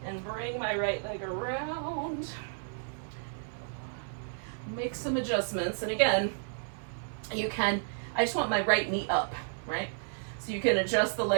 and bring my right leg around. Make some adjustments. And again, I just want my right knee up. Right? So you can adjust the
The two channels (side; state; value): left; silent; 56 dB below the other